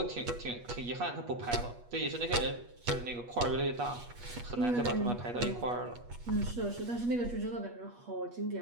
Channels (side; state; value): left; late; 8.3 ms